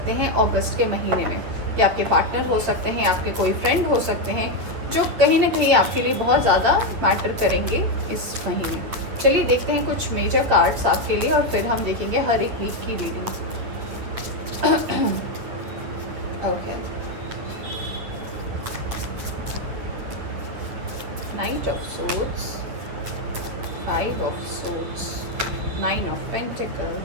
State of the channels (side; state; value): left; late; 9.5 ms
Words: हैं अगस्त के महीने में। कि आपके पार्टनर हो सकते हैं, आपके कोई फ्रेंड हो सकते हैं, जो कहीं ना कहीं आपके लिए बहुत ज़्यादा मैटर करेंगे इस महीने। चलिए देखते हैं कुछ मेजर कार्ड्स आपके लिए, और फिर हम देखेंगे हर एक वीक की reading. Okay, Knight of Swords, Five of Swords, Nine of